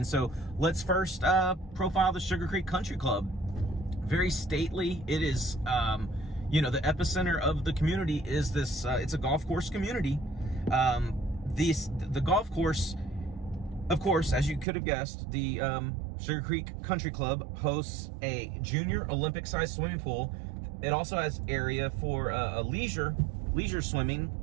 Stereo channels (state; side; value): drops out; left; at 14.7 s